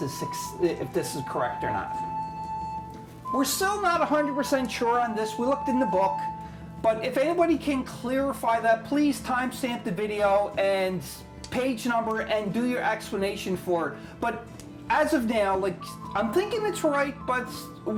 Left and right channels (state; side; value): identical; both; correlation 1.00